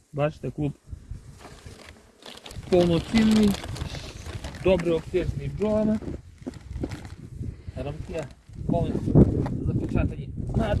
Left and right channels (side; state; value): both; identical; correlation 1.00